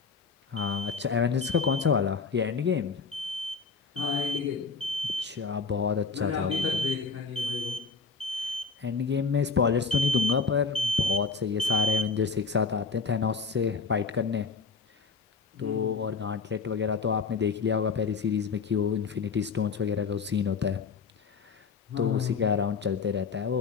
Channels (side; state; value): right; quieter; 5.0 dB